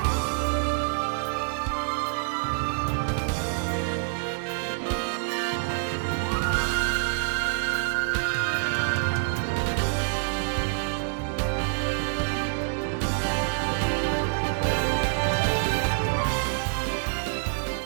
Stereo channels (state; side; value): silent; left; 57 dB below the other